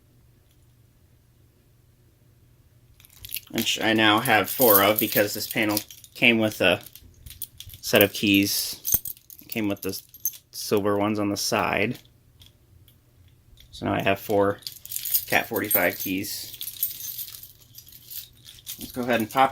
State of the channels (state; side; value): identical; both; correlation 1.00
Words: which I now have 4 of because this panel came with a set of keys. It came with the silver ones on the side. So now I have 4 Cat 45 keys. Let's go ahead and